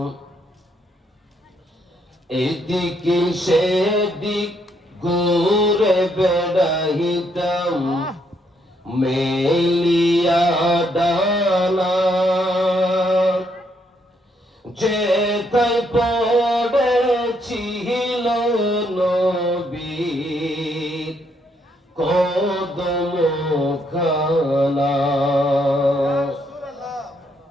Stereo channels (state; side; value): normal; both; correlation 0.73